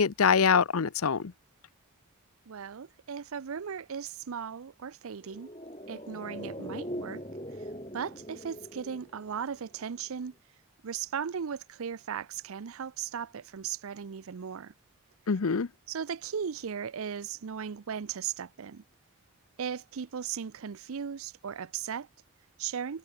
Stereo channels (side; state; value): both; normal; correlation -0.16